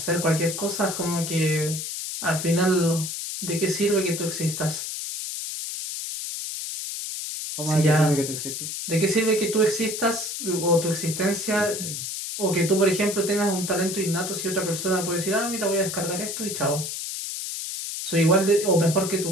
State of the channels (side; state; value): left; noise; hiss, 5 dB below the sound